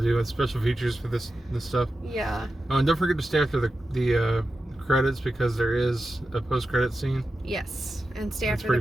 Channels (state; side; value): normal; both; correlation 0.91